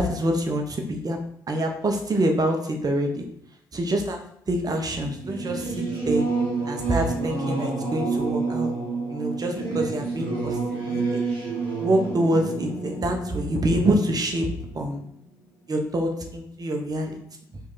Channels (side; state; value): both; normal; correlation 0.74